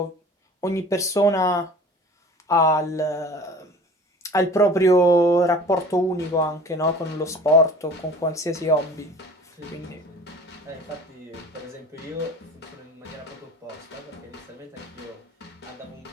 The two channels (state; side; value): normal; both; correlation 0.43